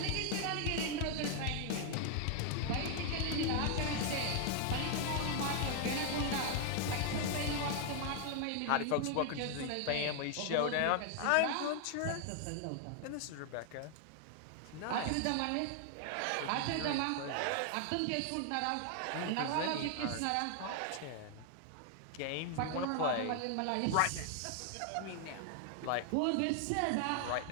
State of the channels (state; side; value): different; both; correlation 0.00